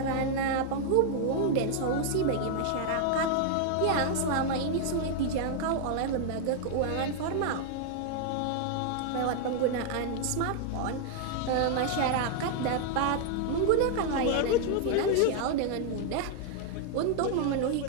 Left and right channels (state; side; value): different; both; correlation 0.00